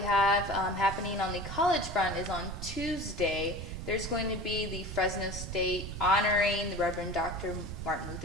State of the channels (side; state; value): right; noise; rumble, 7 dB below the sound